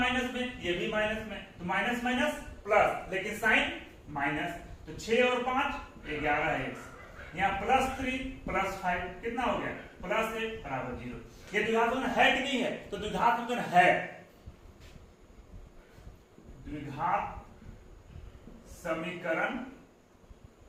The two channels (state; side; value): identical; both; correlation 1.00